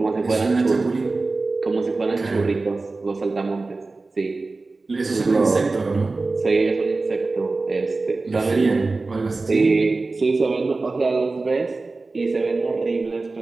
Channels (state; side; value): quieter; left; 3.6 dB